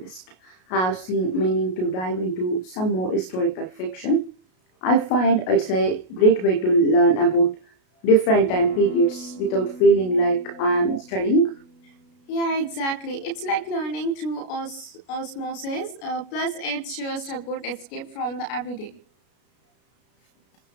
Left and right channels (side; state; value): right; late; 33 ms